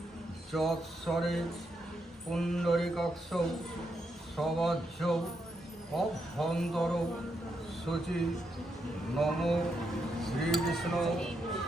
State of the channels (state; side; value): normal; both; correlation 0.81